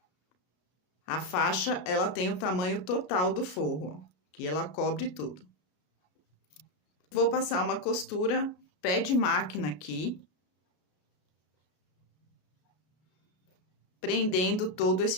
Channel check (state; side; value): late; right; 33 ms